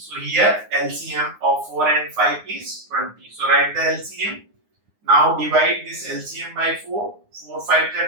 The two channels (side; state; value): left; late; 9.7 ms